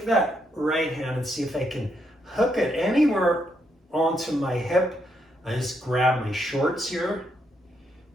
that right hand and see if I can hook it anywhere onto my hip. I just grab my shorts here.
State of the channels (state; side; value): normal; both; correlation 0.77